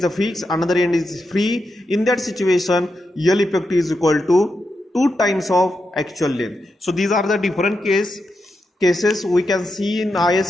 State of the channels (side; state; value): both; normal; correlation 0.86